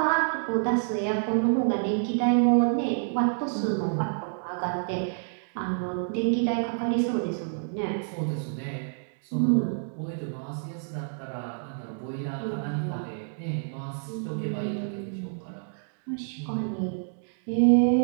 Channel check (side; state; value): left; silent; digital silence